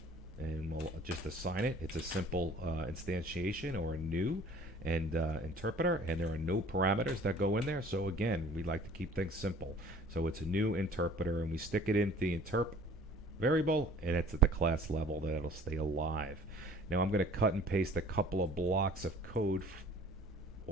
and we'll just assign it. It's a simple instantiation or a new and interpreter, and there are no parameters that go in there. So again, we like to keep things simple. So it's a new interpreter, and we stick it into the interp variable, and it's at the class level that it'll stay alive. Now I'm going to cut and paste a couple of blocks of code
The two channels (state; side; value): normal; both; correlation 0.51